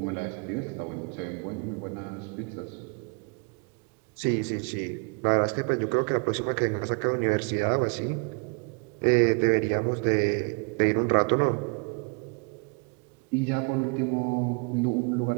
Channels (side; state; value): left; quieter; 34.3 dB